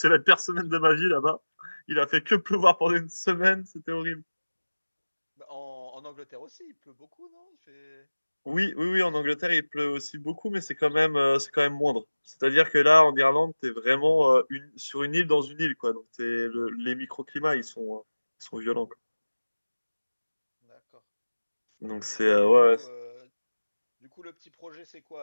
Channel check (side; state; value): both; inverted; correlation -1.00